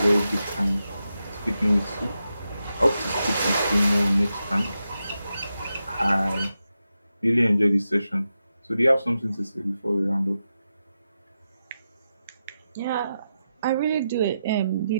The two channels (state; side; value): inverted; both; correlation -0.88